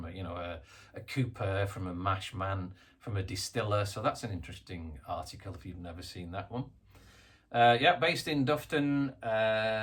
a cooper, from a mash man, from a distiller. So that's an interesting article if you've never seen that one. Yeah, based in Dufton.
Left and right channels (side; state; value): both; identical; correlation 1.00